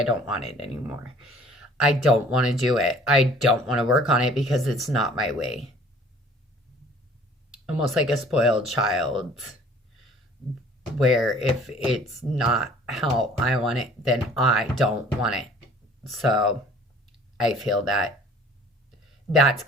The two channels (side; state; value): both; normal; correlation 0.52